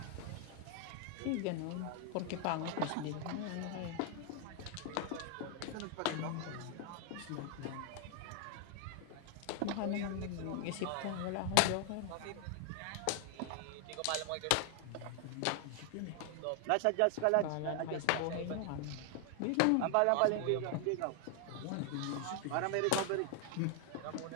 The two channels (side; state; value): both; different; correlation 0.00